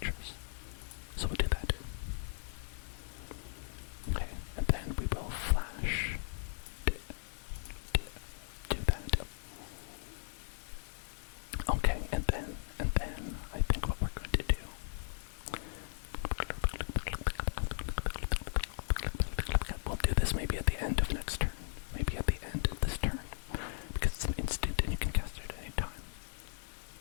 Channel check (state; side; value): silent; right; 53 dB below the other